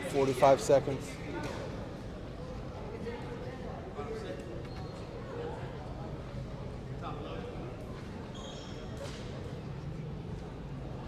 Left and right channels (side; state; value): both; identical; correlation 1.00